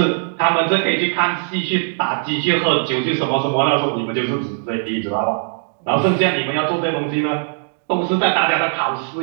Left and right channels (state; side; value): silent; left; 63 dB below the other